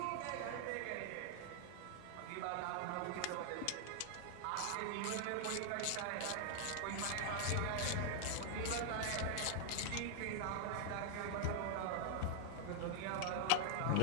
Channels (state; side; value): different; both; correlation 0.00